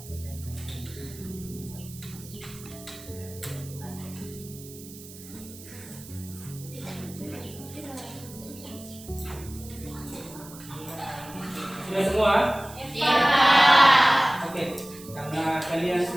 Sudah semua? Ya. Oke, karena kalian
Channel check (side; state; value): right; noise; hiss, 17 dB below the sound